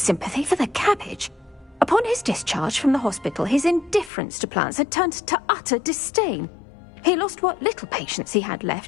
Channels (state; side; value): drops out; right; at 4.1 s